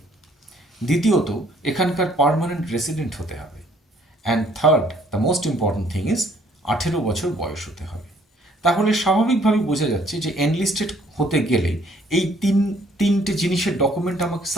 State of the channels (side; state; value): both; normal; correlation 0.62